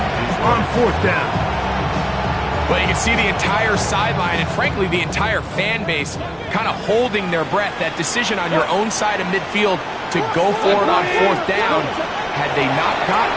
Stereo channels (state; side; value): identical; both; correlation 1.00